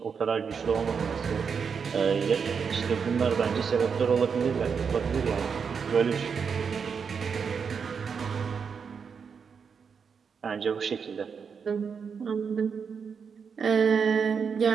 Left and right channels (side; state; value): left; quieter; 6.2 dB